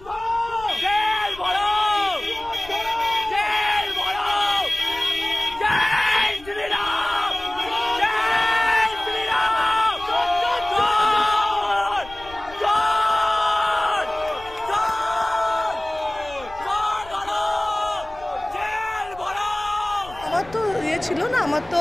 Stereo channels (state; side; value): noise; left; rumble, 20 dB below the sound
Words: আমার তো ইয়ে ছিল না, আমার তো